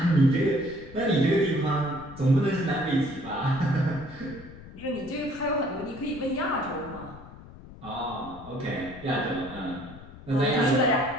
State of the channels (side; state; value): left; noise; rumble, 17 dB below the sound